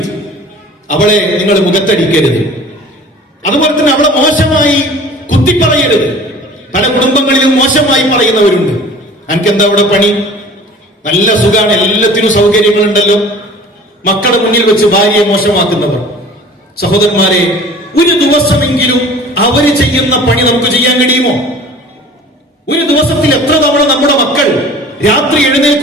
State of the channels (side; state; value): both; normal; correlation 0.45